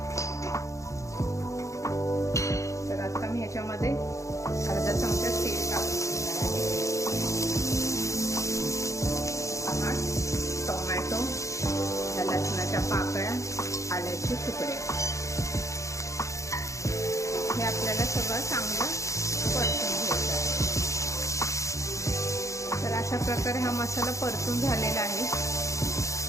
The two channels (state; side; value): late; right; 0.15 ms